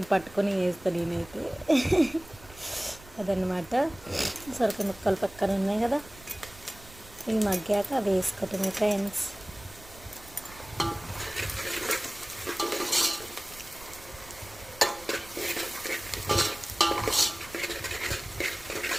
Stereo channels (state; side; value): noise; right; rumble, 20 dB below the sound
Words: పట్టుకొని వేస్తాను నేనైతే. అదనమాట. సొరకాయ ముక్కలు పక్కన ఉన్నాయి కదా, ఇవి మగ్గాక వేసుకోవటమే ఫ్రెండ్స్.